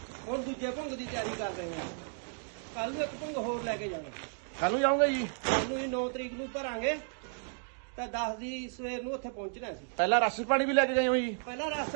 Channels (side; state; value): left; silent; 56 dB below the other